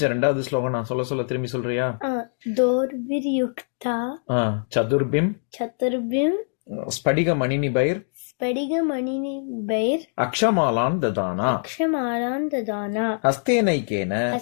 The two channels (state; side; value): silent; right; digital silence